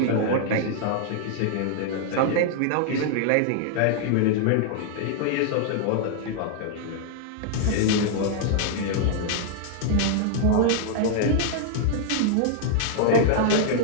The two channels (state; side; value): different; both; correlation -0.01